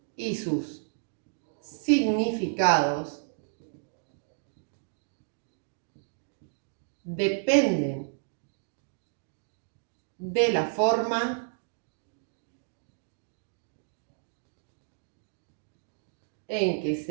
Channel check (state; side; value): silent; left; digital silence